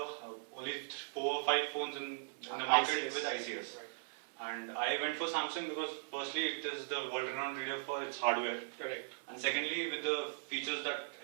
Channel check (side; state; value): left; silent; 52 dB below the other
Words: only 4 or 5 phones in the market ICS. with ICS. Right. And I went for Samsung because firstly it is the world-renowned leader for its hardware. Correct. And secondly, with the features that